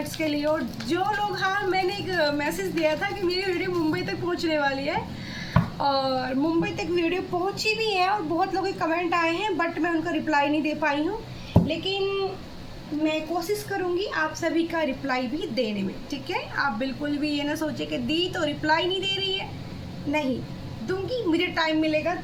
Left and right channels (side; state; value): both; identical; correlation 1.00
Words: के लिए। और जो लोग, हाँ मैंने एक मैसेज दिया था कि मेरी वीडियो मुंबई तक पहुंचने वाली है, और मुंबई तक वीडियो पहुंची भी है और बहुत लोगों के कमेंट आए हैं, बट मैं उनका रिप्लाई नहीं दे पाई हूँ। लेकिन मैं कोशिश करूँगी आप सभी का रिप्लाई भी देने में, ठीक है। आप बिल्कुल भी ये ना सोचे कि दी तो रिप्लाई नहीं दे रही है, नहीं दूंगी, मुझे टाइम मिलेगा